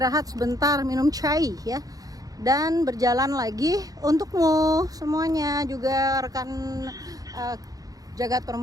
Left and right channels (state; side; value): late; left; 0.18 ms